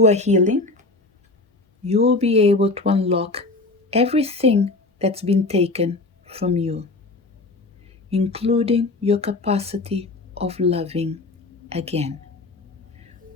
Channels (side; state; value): right; quieter; 3.3 dB